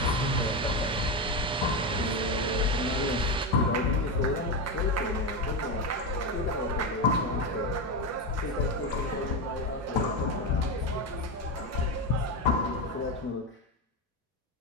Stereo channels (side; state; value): both; normal; correlation 0.13